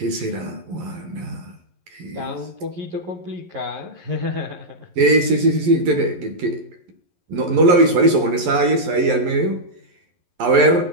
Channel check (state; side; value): late; left; 11 ms